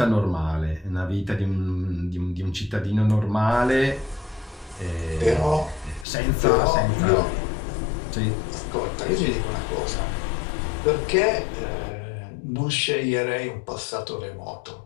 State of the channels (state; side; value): drops out; right; at 6.1 s